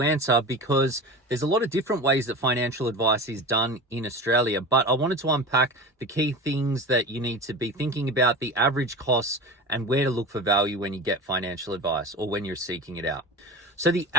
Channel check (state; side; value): normal; both; correlation 0.30